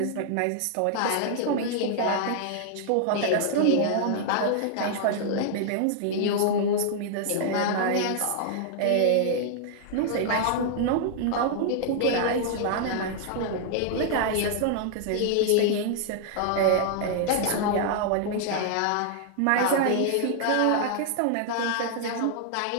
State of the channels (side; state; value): both; different; correlation -0.01